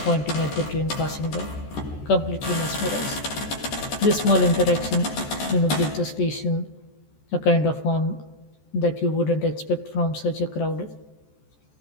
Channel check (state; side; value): late; right; 14 ms